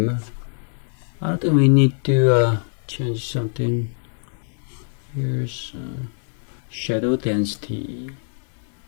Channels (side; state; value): right; silent; 63 dB below the other